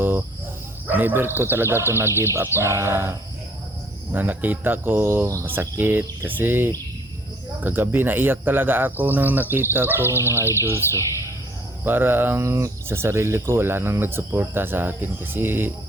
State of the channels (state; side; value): normal; both; correlation 0.57